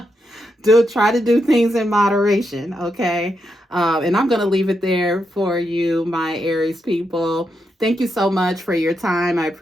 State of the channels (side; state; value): both; normal; correlation 0.83